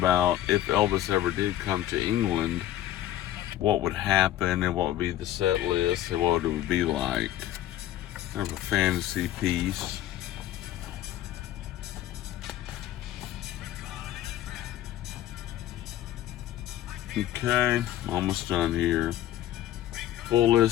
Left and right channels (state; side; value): quieter; right; 13.1 dB